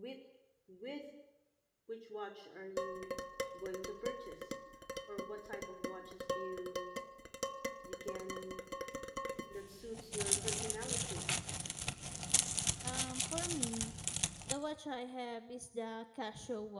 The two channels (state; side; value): identical; both; correlation 1.00